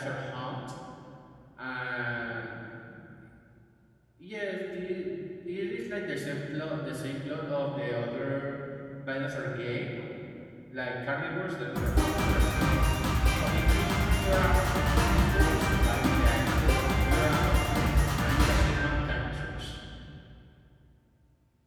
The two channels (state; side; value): identical; both; correlation 1.00